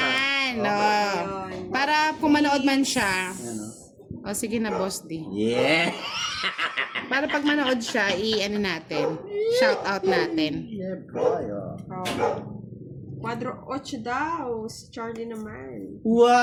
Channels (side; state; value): both; identical; correlation 1.00